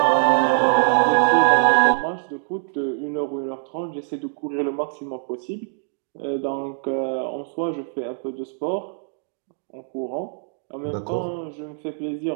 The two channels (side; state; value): left; silent; digital silence